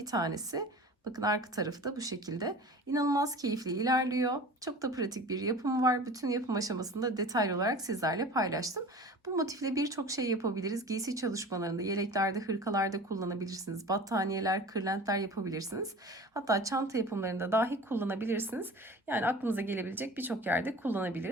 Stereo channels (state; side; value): normal; both; correlation 0.39